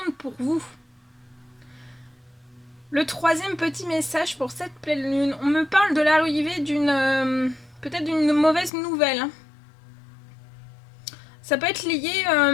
pour vous. Le troisième petit message pour cette pleine lune, on me parle de l'arrivée d'une peut-être d'une mauvaise nouvelle. Ça peut être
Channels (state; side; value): drops out; right; at 8.7 s